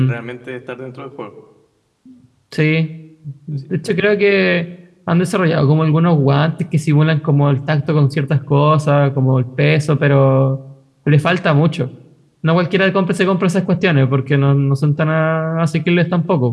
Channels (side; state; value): both; identical; correlation 1.00